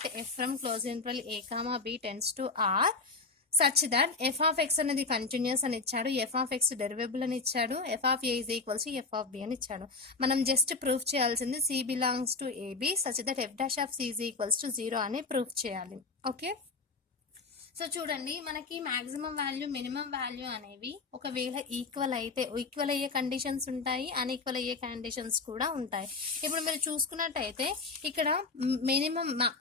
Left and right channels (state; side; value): quieter; right; 4.0 dB